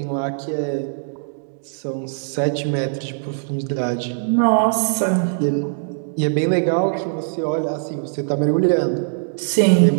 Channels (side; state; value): left; silent; digital silence